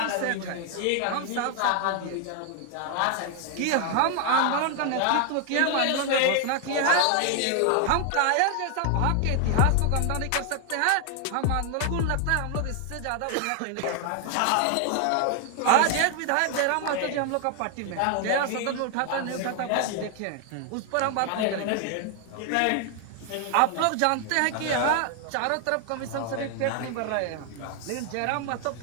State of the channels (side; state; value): both; different; correlation 0.00